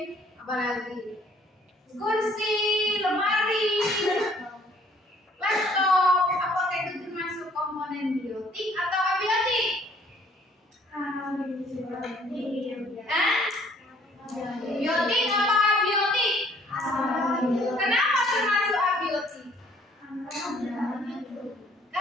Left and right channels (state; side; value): normal; both; correlation 0.60